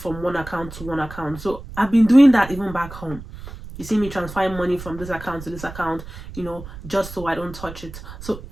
one account to one account. So I've been doing that even back home. You see me transferring money from this account to this account, just so I don't touch it. So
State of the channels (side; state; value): right; noise; rumble, 13 dB below the sound